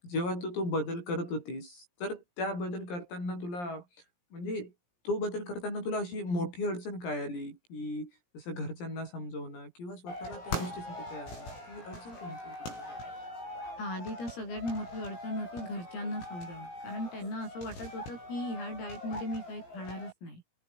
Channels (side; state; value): right; late; 17 ms